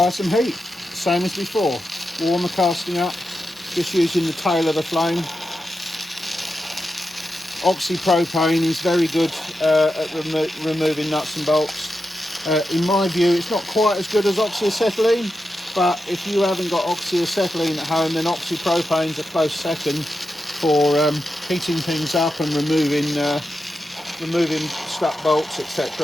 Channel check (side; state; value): both; normal; correlation 0.89